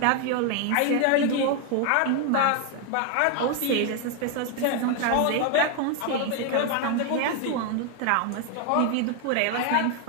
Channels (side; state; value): both; different; correlation 0.01